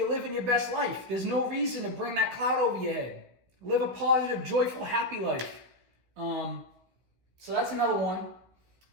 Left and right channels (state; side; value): late; left; 16 ms